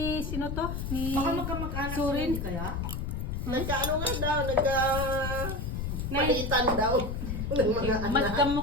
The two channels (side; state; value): left; noise; rumble, 3 dB below the sound